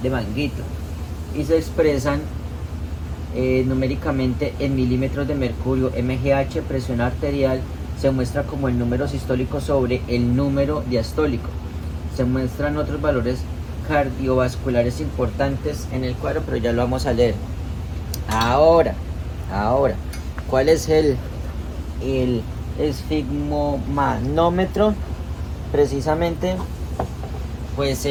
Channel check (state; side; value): identical; both; correlation 1.00